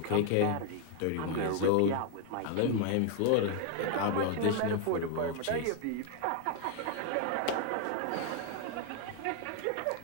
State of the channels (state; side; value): different; both; correlation 0.00